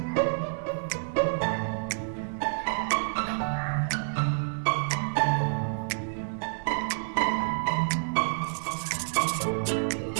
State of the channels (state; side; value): silent; left; digital silence